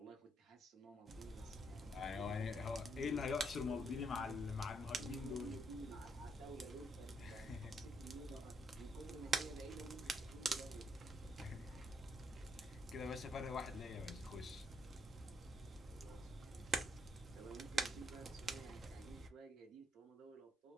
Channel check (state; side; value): normal; both; correlation 0.75